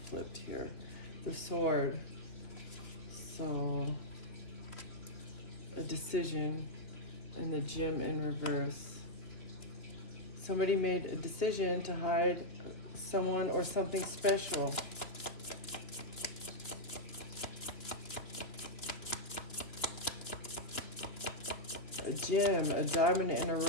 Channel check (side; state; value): right; late; 2.9 ms